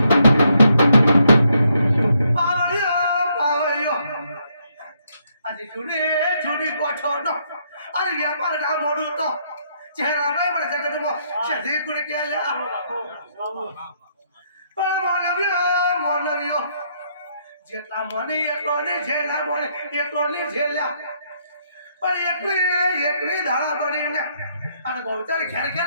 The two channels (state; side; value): inverted; both; correlation -0.73